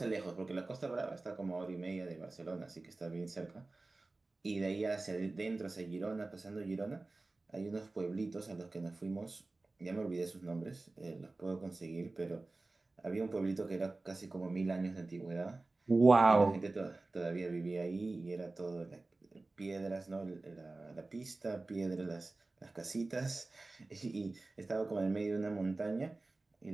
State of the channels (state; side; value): quieter; left; 3.2 dB